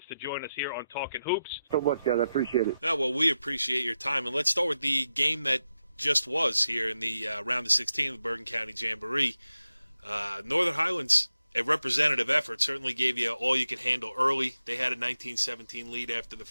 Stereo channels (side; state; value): both; inverted; correlation -0.89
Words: to join us here on Talkin Hoops. So much, guys. I appreciate it. Well, we appreciate your time. And let's start with the game that just was here in the round of 16 of the Bergen County Jamboree. Northern Highlands a representative effort. Certainly gave you all you could handle early. They had a 19-17 lead after the